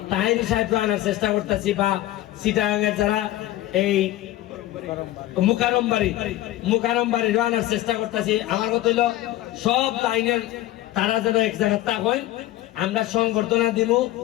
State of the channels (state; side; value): quieter; right; 15.4 dB